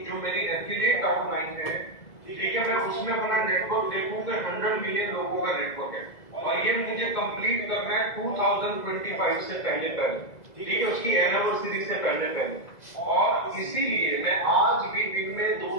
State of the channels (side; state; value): right; late; 2.0 ms